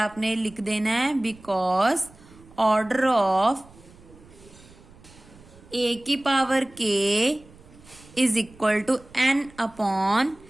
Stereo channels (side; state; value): right; noise; rumble, 24 dB below the sound